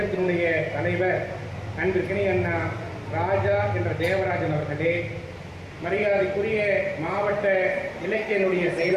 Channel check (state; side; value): identical; both; correlation 1.00